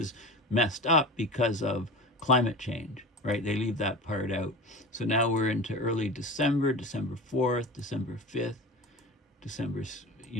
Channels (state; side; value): normal; both; correlation 0.31